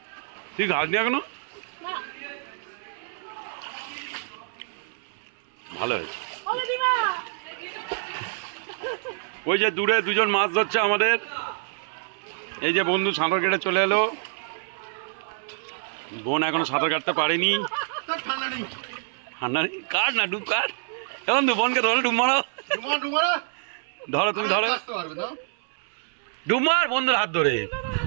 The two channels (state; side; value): silent; left; 60 dB below the other